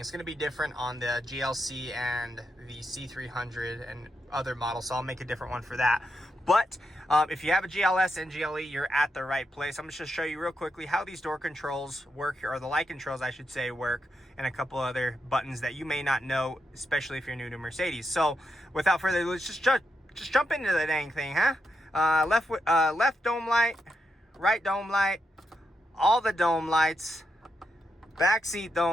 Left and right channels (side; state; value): both; normal; correlation 0.84